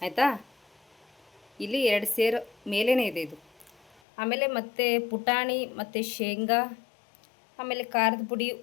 ಆಯಿತಾ. ಇಲ್ಲಿ 2 ಸೇರು ಮೇಲೇ ಇದೆ ಇದು. ಆಮೇಲೆ ಮತ್ತು ಪುಟಾಣಿ ಮತ್ತು ಶೇಂಗಾ, ಆಮೇಲೆ ಖಾರದ ಪುಡಿ,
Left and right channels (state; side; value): drops out; right; at 4.0 s